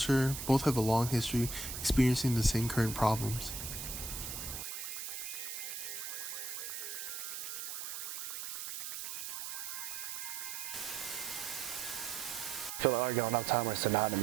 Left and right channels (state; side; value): noise; right; hiss, 6 dB below the sound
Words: both have a long history experiencing the same current problems. I feel like Argyle and Uptown are